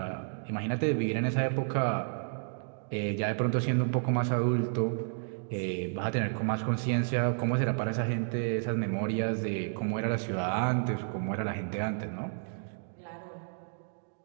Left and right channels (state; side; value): silent; left; digital silence